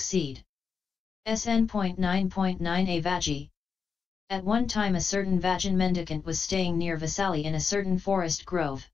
SN.9.9 A Vajji. At one time a certain Vajjan mendicant was staying near Vasali in a certain forest grove.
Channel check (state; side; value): quieter; right; 5.5 dB